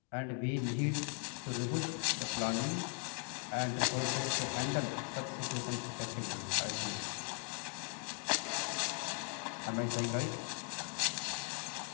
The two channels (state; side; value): quieter; right; 39.2 dB